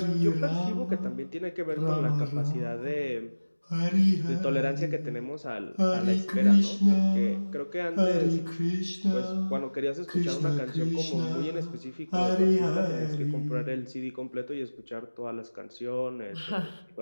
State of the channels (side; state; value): both; inverted; correlation -1.00